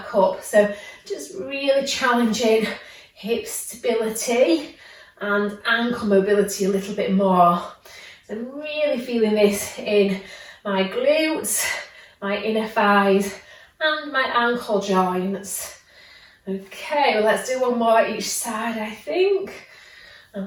up. So just really challenging hip stability and ankle mobility a little bit more. So really feeling this in my glutes, my inner thighs, and my ankle joints. Okay, well, let's do one more each side, I think.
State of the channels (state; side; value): identical; both; correlation 1.00